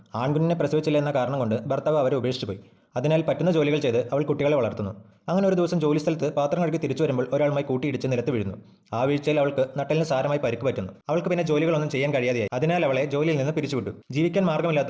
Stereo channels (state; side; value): identical; both; correlation 1.00